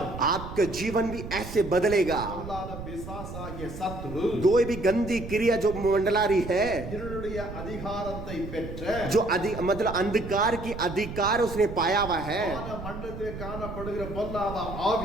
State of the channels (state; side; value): noise; right; rumble, 9 dB below the sound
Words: आपका जीवन भी ऐसे बदलेगा। அல்லாத பிசாசாகிய சத்ரு कोई भी गंदी क्रिया जो मंडला रही है, இருளுடைய அதிகாரத்தை பெற்ற जो मतलब अंधकार की अधिकार उसने पाया हुआ है, வான மண்டலத்திலே காணப்படுகிற பொல்லாத ஆவி